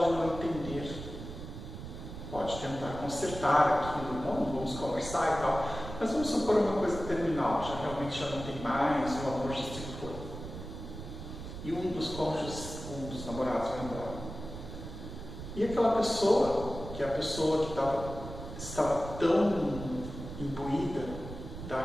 não entender, pode tentar consertar aquilo, não, vamos conversar e tal, mas vamos supor uma coisa terminal, realmente já não tem mais, o amor já se foi. E um dos cônjuges, um dos namorados vai embora. E aquela pessoa, que é a pessoa que estava tão imbuída da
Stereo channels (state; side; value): noise; right; rumble, 10 dB below the sound